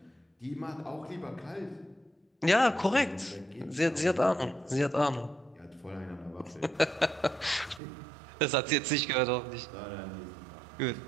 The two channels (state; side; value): drops out; left; at 7.8 s